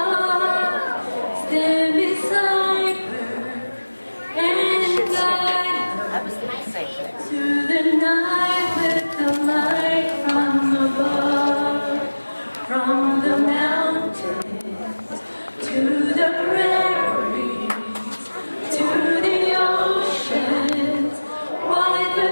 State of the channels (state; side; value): inverted; both; correlation -1.00